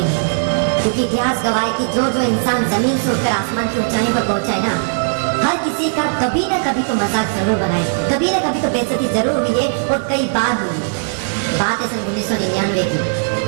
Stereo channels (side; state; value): left; silent; digital silence